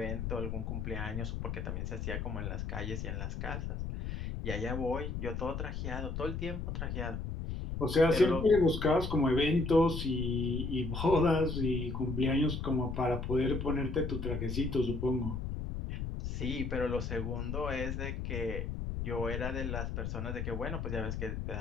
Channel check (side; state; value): left; noise; rumble, 4 dB below the sound